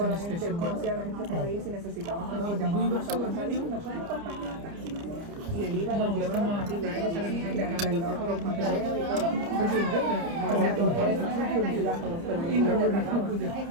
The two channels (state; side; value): late; left; 30 ms